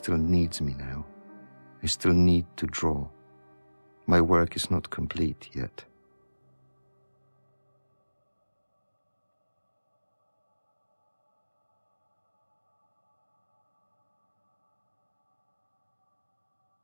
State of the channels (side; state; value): both; inverted; correlation -1.00